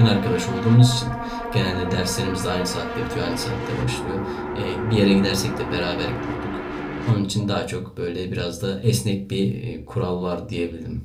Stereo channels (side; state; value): both; identical; correlation 1.00